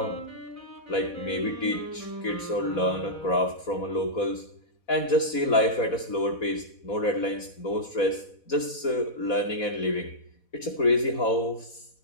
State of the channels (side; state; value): right; late; 4.1 ms